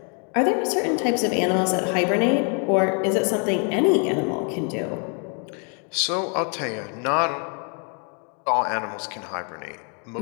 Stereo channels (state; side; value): quieter; right; 39.3 dB